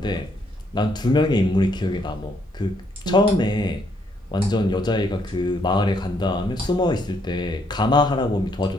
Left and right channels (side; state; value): both; normal; correlation 0.71